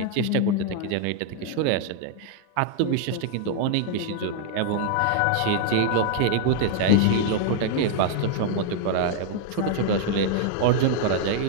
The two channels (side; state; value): both; different; correlation 0.00